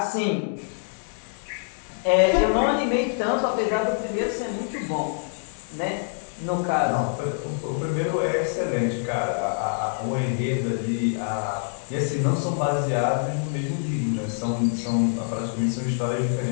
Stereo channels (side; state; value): right; silent; digital silence